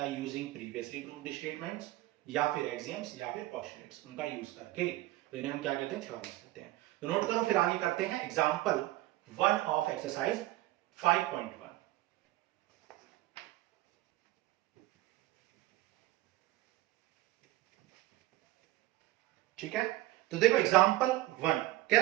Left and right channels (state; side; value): quieter; left; 17.2 dB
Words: है यूजिंग प्रीवियसली प्रूव्ड स्टेटमेंट्स या फिर एक्सियम्स या फिर पोस्टुलेट्स, उनका यूज करके। तो इन्हें हम क्या कहते हैं, थ्योरम्स कहते हैं। तो नोट करो, फिर आगे करते हैं एग्जाम्पल 1 ऑफ एक्सरसाइज 5.1। ठीक है, तो देखो एग्जाम्पल 1 कह